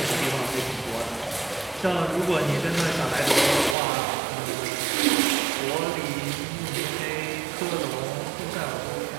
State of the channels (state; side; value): drops out; left; at 3.8 s